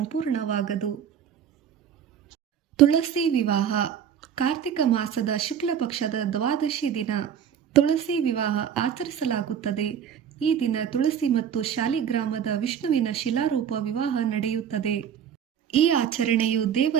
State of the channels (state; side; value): quieter; left; 8.7 dB